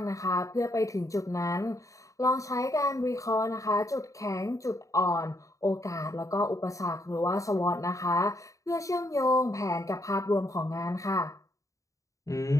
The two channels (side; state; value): right; late; 0.16 ms